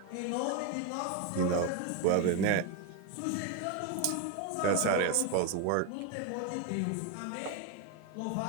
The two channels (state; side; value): different; both; correlation 0.02